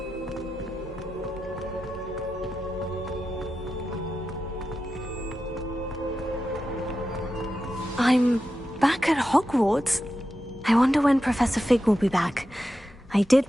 I'm back at Hogwarts. I wonder when Professor Fig will be back. I did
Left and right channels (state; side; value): normal; both; correlation 0.90